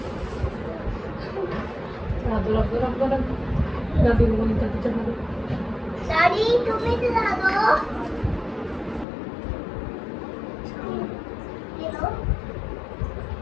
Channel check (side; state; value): right; drops out; at 9.1 s